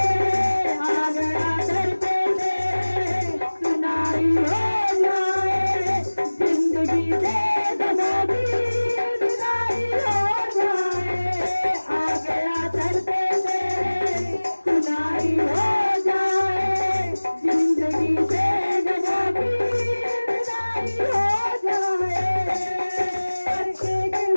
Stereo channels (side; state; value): both; inverted; correlation -1.00